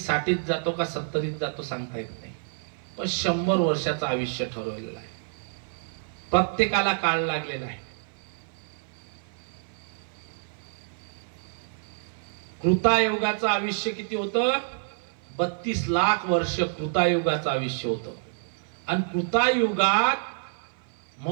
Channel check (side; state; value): left; silent; 58 dB below the other